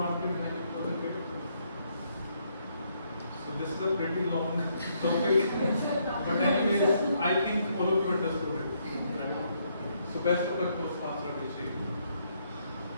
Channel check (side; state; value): both; inverted; correlation -0.73